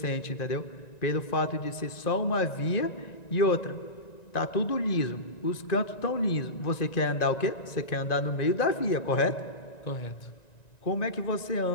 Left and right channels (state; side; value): late; right; 1.9 ms